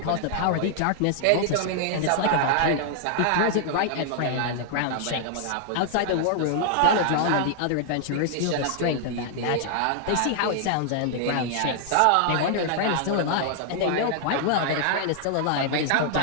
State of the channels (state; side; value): different; both; correlation -0.01